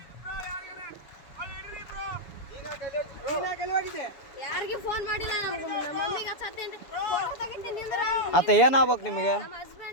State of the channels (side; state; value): right; late; 7.1 ms